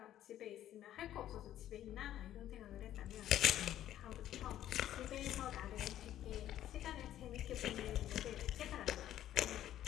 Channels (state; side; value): quieter; right; 12.2 dB